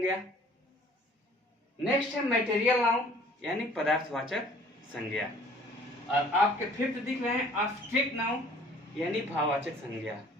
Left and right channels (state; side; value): normal; both; correlation 0.54